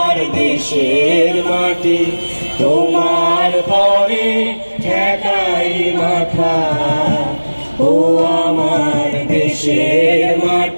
দেশের মাটি, তোমার পরে ঠেকাই মাথা। ও আমার দেশের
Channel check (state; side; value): inverted; both; correlation -1.00